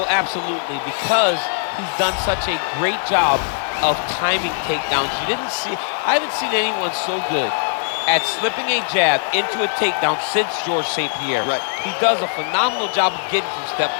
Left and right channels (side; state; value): right; silent; 63 dB below the other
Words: absolutely, because he's done such a great job of timing takedowns. I haven't seen anyone so good at slipping a jab into a takedown since George St. Pierre. Right. He does a phenomenal job of getting from step